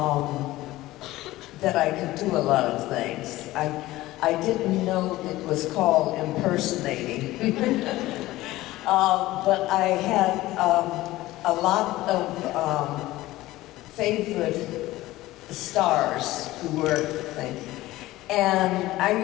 that I could do a lot of things. I didn't know it was called impersonating. But I had a lot of favorite stars who were things. And I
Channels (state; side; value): quieter; right; 17.2 dB